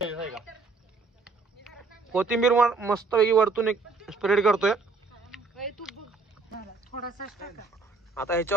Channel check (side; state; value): left; quieter; 4.1 dB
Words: कोथिंबीर मस्त पैकी वरतून एक स्प्रेड करतोय. आता